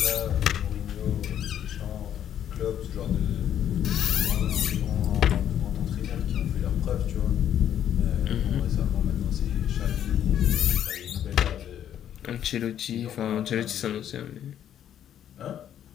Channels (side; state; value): right; quieter; 10.1 dB